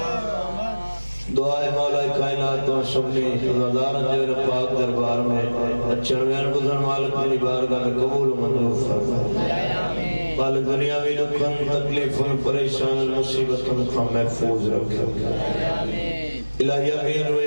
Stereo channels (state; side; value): inverted; both; correlation -1.00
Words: دعائے مولا کائنات و شبنی رضارن جیر پاک دربار میں اچھنوین بزن مالک منی بارگاہ میں قبول و منظور فرمائے مالک دنیاوی دکھن تکلیفن پریشان مصیبتن کا محفوظ رکھے الہی امین